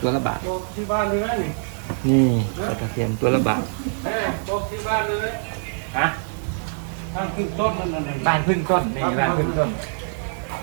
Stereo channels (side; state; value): left; silent; 60 dB below the other